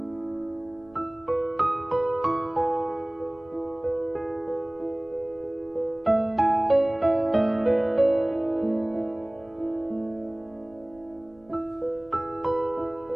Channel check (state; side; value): noise; right; rumble, 29 dB below the sound